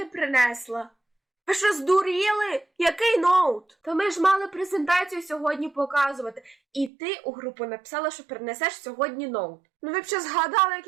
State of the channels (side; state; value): left; drops out; at 6.9 s